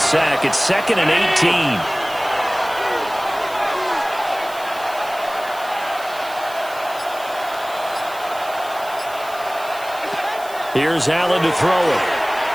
It's 2nd and 18. Here's Allen to throw it.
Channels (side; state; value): right; noise; hiss, 18 dB below the sound